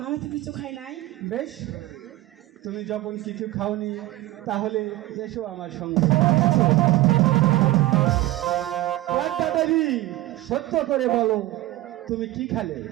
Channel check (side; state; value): left; quieter; 17.1 dB